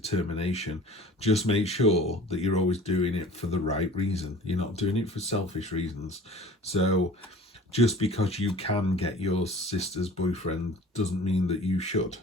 Just make sure that you're always doing it for the right reason. You're not doing it for selfish reasons. So just because you can get your sister's boyfriend doesn't mean that you should.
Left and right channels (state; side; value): normal; both; correlation 0.43